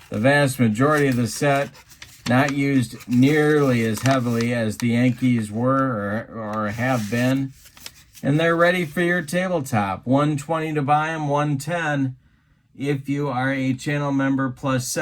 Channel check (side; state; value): both; identical; correlation 1.00